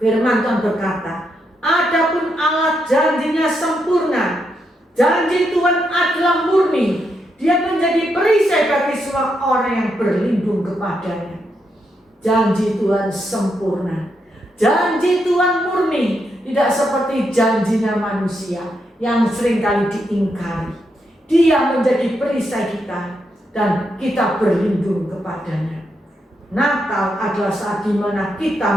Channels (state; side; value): normal; both; correlation 0.81